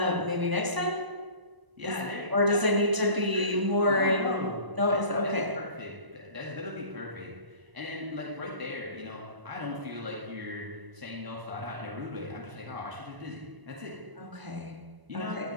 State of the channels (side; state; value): left; late; 1.0 ms